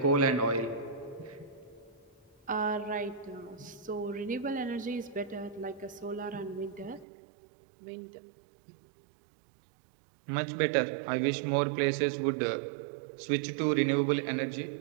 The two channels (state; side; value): drops out; left; at 7.1 s